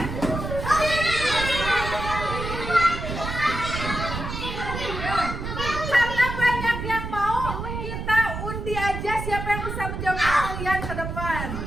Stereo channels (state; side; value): noise; right; rumble, 5 dB below the sound